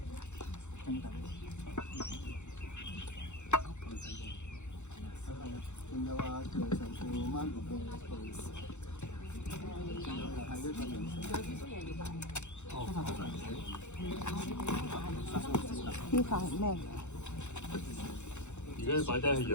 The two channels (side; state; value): right; late; 0.83 ms